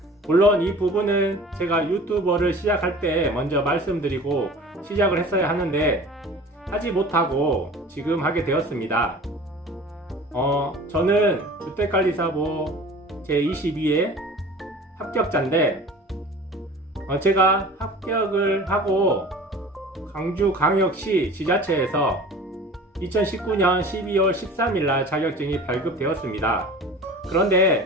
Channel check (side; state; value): both; normal; correlation 0.42